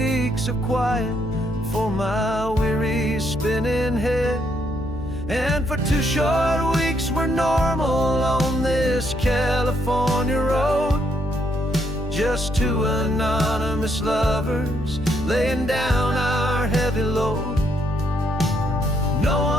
of quiet for my weary spinning head. And for 2 short weeks we're normal on this California road, just 2 anonymous lovers laying down our heavy load. No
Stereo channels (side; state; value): left; noise; hum, 10 dB below the sound